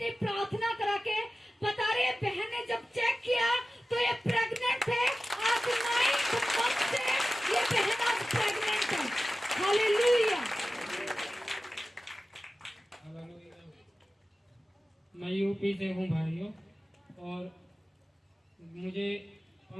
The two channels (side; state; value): both; normal; correlation 0.95